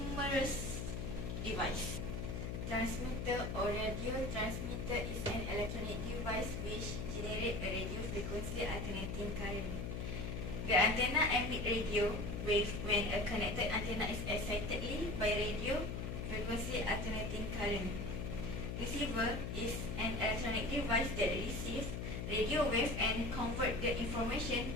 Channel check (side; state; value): left; noise; hum, 4 dB below the sound